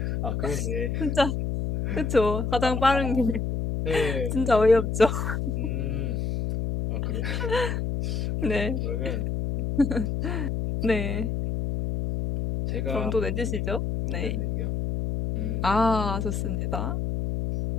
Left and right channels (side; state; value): left; noise; hum, 1 dB below the sound